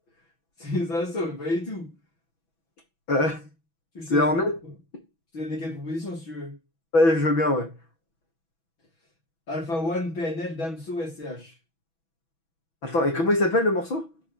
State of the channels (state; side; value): late; right; 6.1 ms